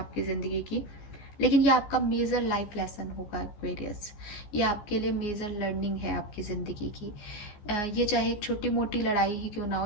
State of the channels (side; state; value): right; late; 14 ms